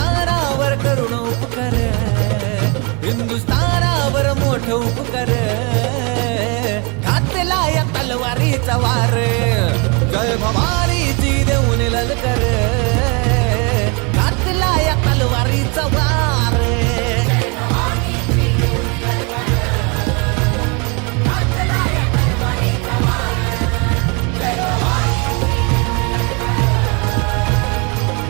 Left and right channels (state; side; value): quieter; left; 31.9 dB